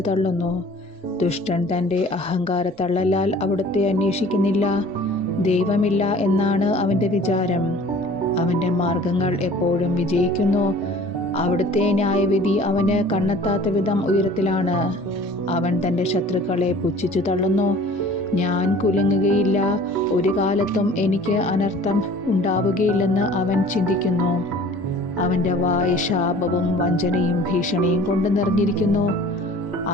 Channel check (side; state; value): both; normal; correlation 0.48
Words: തള്ളുന്നു. ദുഷ്ടൻ തൻ്റെ അഹങ്കാരത്തള്ളലാൽ അവിടുത്തെ അന്വേഷിക്കുന്നില്ല. ദൈവമില്ല എന്നാണ് അവൻ്റെ വിചാരം. അവൻ്റെ മാർഗങ്ങൾ എപ്പോഴും വിജയിക്കുന്നു. അവിടുത്തെ ന്യായവിധി അവന് കണ്ണെത്താത്ത വിധം ഉയരത്തിലാണ്. അവൻ തൻ്റെ ശത്രുക്കളെ പുച്ഛിച്ചു തള്ളുന്നു. ഞാൻ കുലുങ്ങുകയില്ല, ഒരു കാലത്തും എനിക്ക് അനർത്ഥം ഉണ്ടാവുകയില്ലെന്ന് അവൻ ചിന്തിക്കുന്നു. അവൻ്റെ വായ് ശാപവും വഞ്ചനയും ഭീഷണിയും കൊണ്ട് നിറഞ്ഞിരിക്കുന്നു.